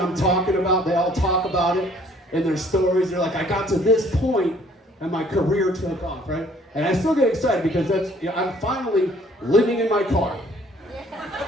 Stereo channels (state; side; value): normal; both; correlation 0.59